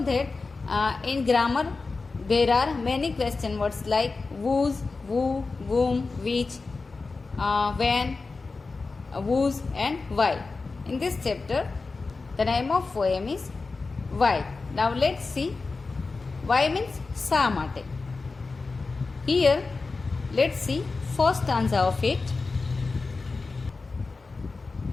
that in grammar there are many question words like whose, who, whom, which, when, whose and why. In this chapter, the name of poem is Why. Now let's see. Why means શા માટે. Here, let's see first stanza of it.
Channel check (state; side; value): quieter; right; 4.0 dB